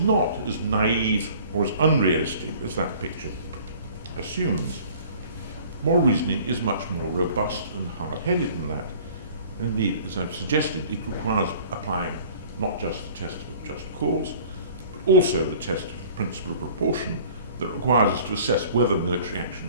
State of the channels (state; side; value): inverted; both; correlation -0.48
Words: as naive or as unrealistic as that picture assumes. Moral reasoning is much more robust and hard-headed than that. And indeed, as I've suggested, it requires applying not just the test of just cause, but also the test of the principle of proportion that requires us to assess whether military